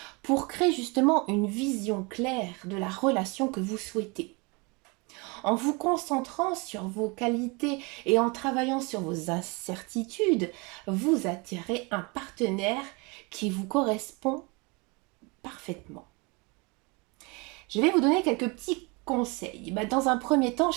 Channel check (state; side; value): quieter; left; 28.6 dB